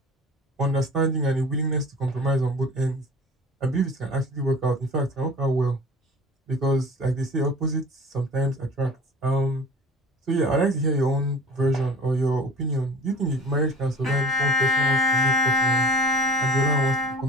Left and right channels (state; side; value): normal; both; correlation 0.43